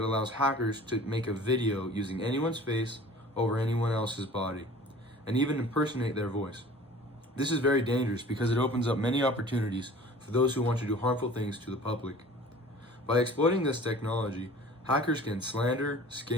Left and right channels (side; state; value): both; normal; correlation 0.45